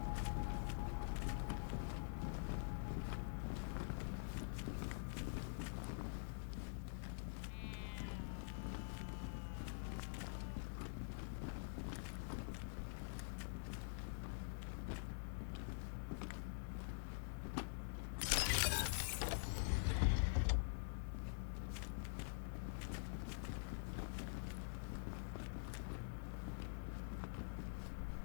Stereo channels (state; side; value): silent; right; digital silence